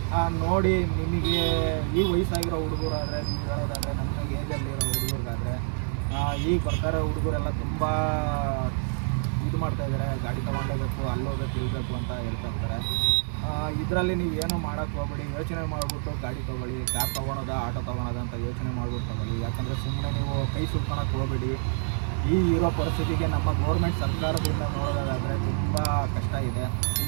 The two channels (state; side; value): silent; left; 60 dB below the other